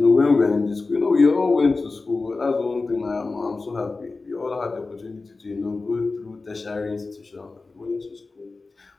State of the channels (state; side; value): quieter; right; 3.7 dB